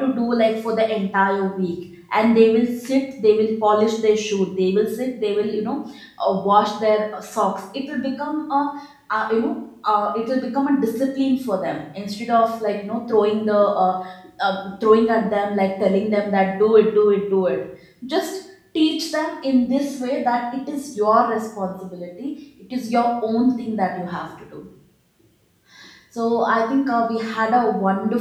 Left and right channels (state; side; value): identical; both; correlation 1.00